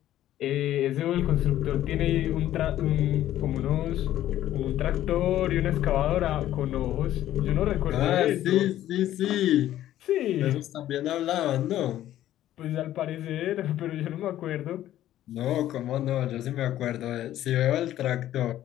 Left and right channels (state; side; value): quieter; right; 13.0 dB